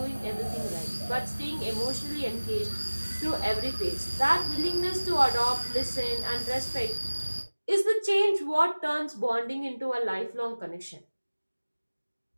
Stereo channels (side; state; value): both; inverted; correlation -1.00